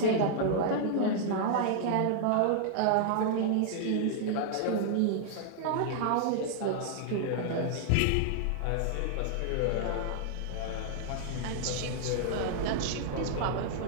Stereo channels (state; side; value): different; both; correlation -0.01